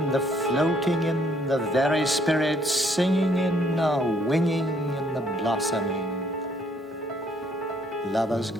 the floating in the very spirit, singing in are winging in the blossoming. Lovers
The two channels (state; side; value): normal; both; correlation 0.67